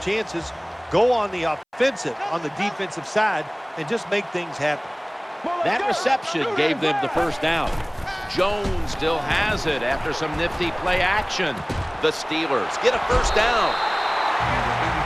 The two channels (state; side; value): identical; both; correlation 1.00